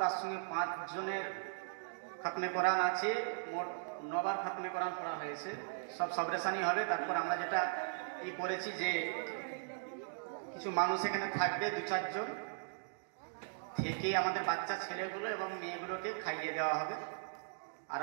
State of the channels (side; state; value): left; silent; digital silence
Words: তার সঙ্গে 5 জনের খতমে কোরআন আছে, মোট 9 বার খতমে কোরআন পড়া হয়েছে। সব সবরেশানি হবে। তারপর আমরা যেটা করেছি যে কিছু মানুষ এখানে থাকবে, 2-4 জন থেকে আমাদের বাচ্চা ছেলেগুলো এবং মেয়েগুলোকে খাইয়ে দেওয়া হবে। আর